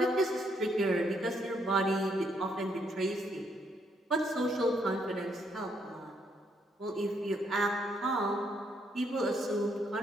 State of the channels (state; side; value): normal; both; correlation 0.73